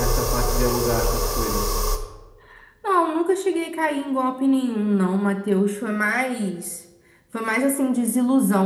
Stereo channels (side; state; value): both; identical; correlation 1.00